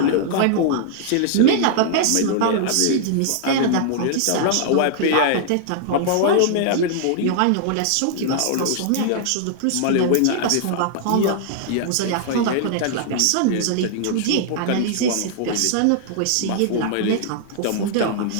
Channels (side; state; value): both; different; correlation -0.01